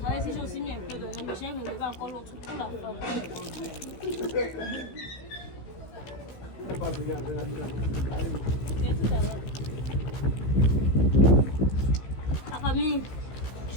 ici, j'ai aussi mis un peu d'oignon, mais j'ai enlevé encore l'autre pour la forme. La famille,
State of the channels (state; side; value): late; right; 15 ms